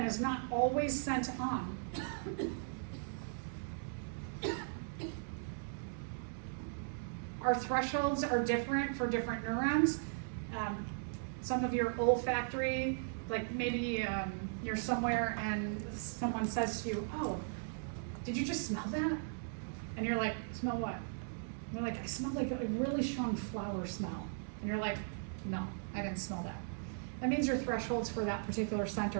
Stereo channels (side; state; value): left; silent; digital silence